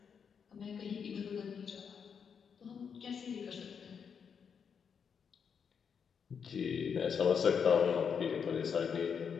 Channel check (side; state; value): right; quieter; 6.8 dB